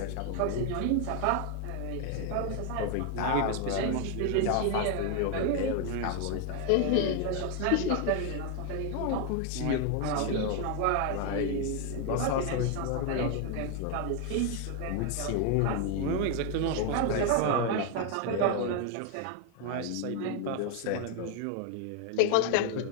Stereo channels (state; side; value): different; both; correlation 0.00